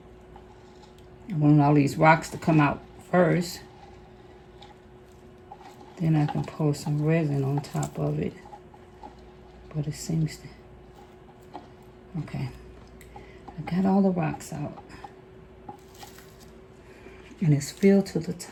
I want all these rocks to come out first. Then I can pour some resin on top of it. But it seems to... Okay. I got all the rocks out. And it's filled to the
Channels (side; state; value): both; identical; correlation 1.00